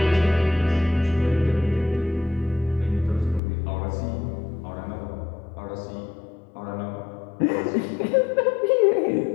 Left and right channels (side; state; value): right; drops out; at 3.4 s